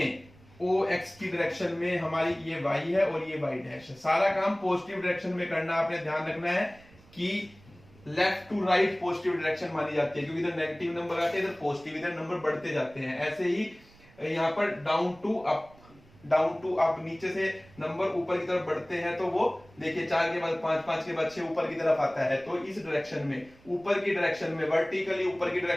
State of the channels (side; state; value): right; noise; rumble, 26 dB below the sound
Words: ओ एक्स की डायरेक्शन में हमारी ये वाई है और ये वाई डैश है। सारा काम पॉजिटिव डायरेक्शन में करना, आपने ध्यान रखना है कि left to right positive direction मानी जाती है, क्योंकि इधर नेगेटिव नंबर आते हैं, इधर पॉजिटिव, इधर नंबर बढ़ते जाते हैं। ऐसे ही यहाँ पर down to up, down to up, नीचे से नंबर ऊपर की तरफ बढ़ते हैं तो वो देखिए 4 के बाद 5, 5 के बाद 6 ऊपर की तरफ आता है। तो इस डायरेक्शन में, ऊपर की डायरेक्शन में, वर्टिकली ऊपर की